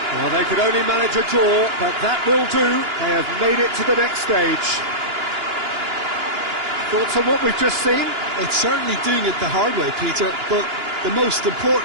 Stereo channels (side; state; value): left; late; 2.9 ms